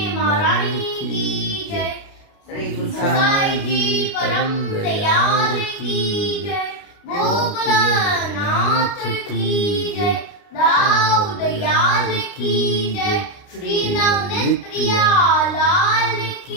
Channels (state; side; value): late; right; 29 ms